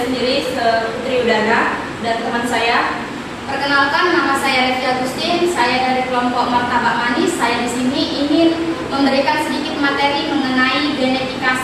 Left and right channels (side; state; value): both; identical; correlation 1.00